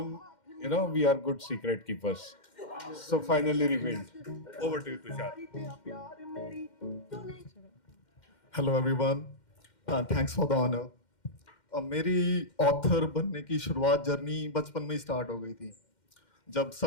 we are good secret keepers. So finally revealed. Over to you, Tushar. Hello everyone, thanks for the honour. मेरी ऑथर बनने की शुरुआत जर्नी बचपन में ही स्टार्ट हो गई थी। जब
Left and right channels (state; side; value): late; right; 2.1 ms